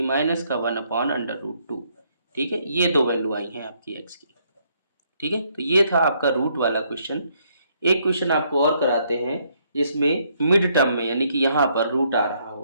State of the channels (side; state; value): both; inverted; correlation -0.71